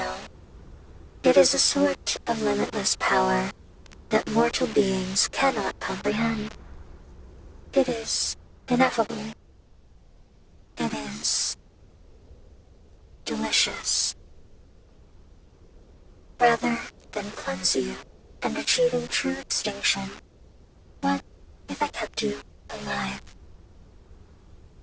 It is a sort of limitless power that mortal beings cannot comprehend. It is ineffable. It is delicious. Rather than cleanse you and achieving true extinction, what if I kept you alive?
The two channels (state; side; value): identical; both; correlation 1.00